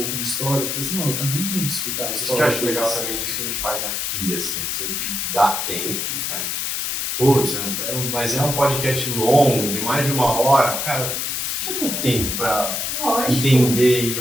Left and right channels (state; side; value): noise; left; hiss, 1 dB below the sound